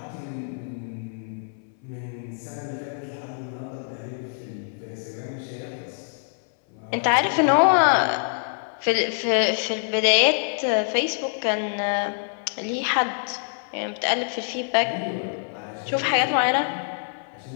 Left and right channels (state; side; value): silent; right; 62 dB below the other